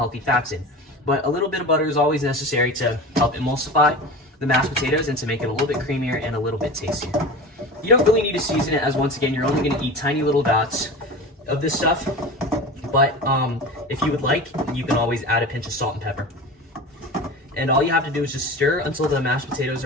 fats in. But a little bit of butter is always necessary to help emulsify the mashed potatoes and to make it a little bit creamier and a little bit tastier. You don't really need to season it, as once again, you're only going to eat tiny little dots of this stuff. But if you would like, you can always add a pinch of salt and pepper. And all you have to do is just stir until the mashed potatoes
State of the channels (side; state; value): both; normal; correlation 0.32